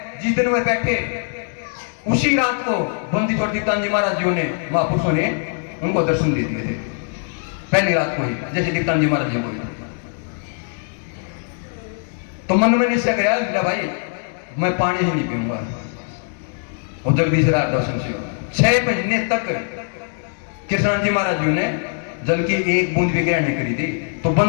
जिस दिन वे बैठे उसी रात को बंदी छोड़ दीप्तान जी महाराज जी ने, महापुरुषों ने उनको दर्शन दे दिए थे। पहली रात को ही जैसे दीप्तान जी महाराज जी को। तो मन में निश्चय किया भाई मैं पानी ही नहीं पीऊंगा। और जगदीश राय दर्शन से 6 महीने तक कृष्ण जी महाराज जी ने जल की एक बूंद भी ग्रहण नहीं करी थी। तो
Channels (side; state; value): right; silent; 57 dB below the other